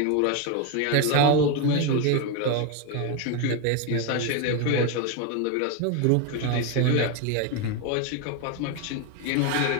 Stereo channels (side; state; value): both; different; correlation 0.02